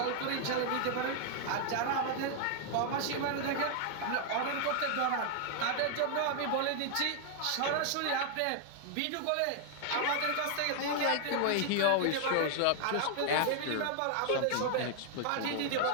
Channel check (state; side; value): different; both; correlation 0.00